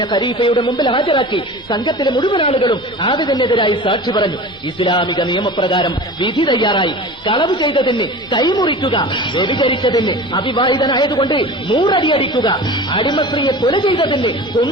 ഖലീഫയുടെ മുമ്പിൽ ഹാജരാക്കി. സംഘത്തിലെ മുഴുവൻ ആളുകളും ആബിദിനെതിരായി സാക്ഷി പറഞ്ഞു. ഇസ്ലാമിക നിയമപ്രകാരം വിധി തയ്യാറായി. കളവ് ചെയ്തതിന് കൈമുറിക്കുക, വ്യഭിചരിച്ചതിന് അവിവാഹിതനായതുകൊണ്ട് 100 അടി അടിക്കുക, അടിമസ്ത്രീയെ കൊല ചെയ്തതിന്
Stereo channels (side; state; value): both; normal; correlation 0.36